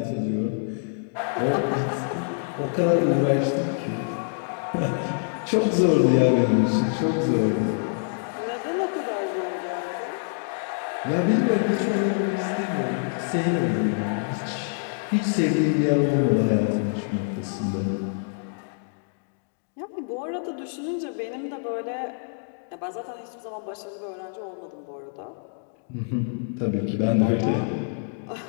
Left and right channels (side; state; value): right; silent; digital silence